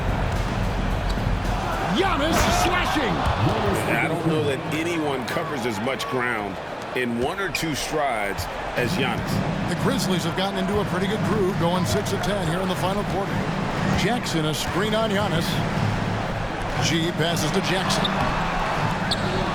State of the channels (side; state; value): both; identical; correlation 1.00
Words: Giannis slashing. I don't know that anyone covers as much ground in 1 or 2 strides as Giannis. The Grizzlies have gotten into a pretty good groove, going 6 of 10 here in the final quarter. Jackson, a screen on Giannis. G passes to Jackson.